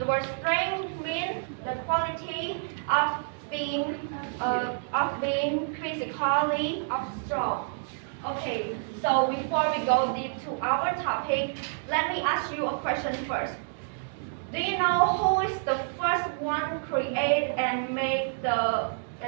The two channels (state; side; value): silent; left; digital silence